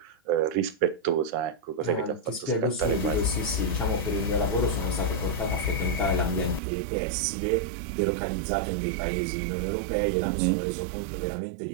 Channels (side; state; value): left; drops out; at 6.6 s